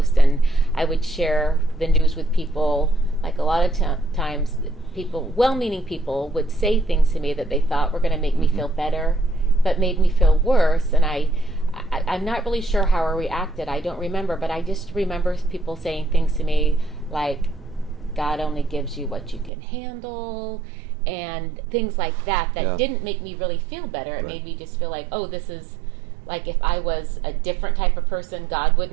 and I would share the news with people. Like a lot of times people, well-meaning people, would say things to me that they thought were going to make me feel better, but made me feel worse. And I'm not really sure how I reacted. I don't remember, but I just remember people saying things to me like, God only gives you what you can handle, and things like that didn't make me really feel better. It made me just feel like, oh, this is like, if I was a different type of person, God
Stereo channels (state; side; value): drops out; left; at 19.5 s